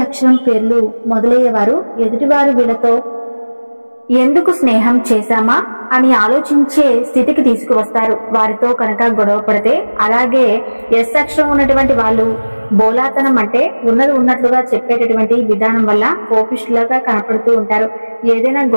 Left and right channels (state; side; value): inverted; both; correlation -1.00